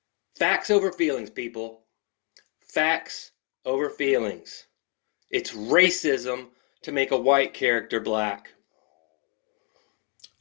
Facts over feelings, people. Facts over feelings. It's racism to make a white character black.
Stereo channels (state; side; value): quieter; right; 36.5 dB